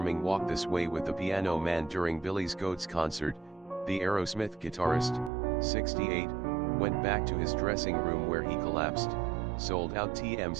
Walk This Way with the Piano Man during Billy's Goat's concert, the Aerosmith guitarist, 68, went back to his dressing room where he collapsed, sold out.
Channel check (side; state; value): left; drops out; at 5.3 s